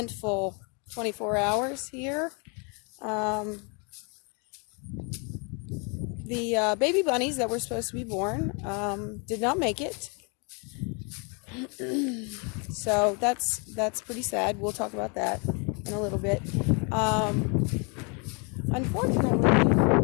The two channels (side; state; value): right; quieter; 34.3 dB